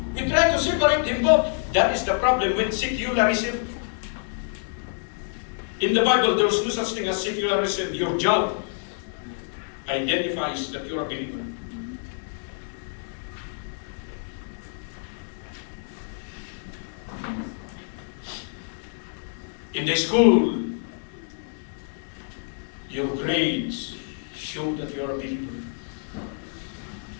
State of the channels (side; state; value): right; silent; digital silence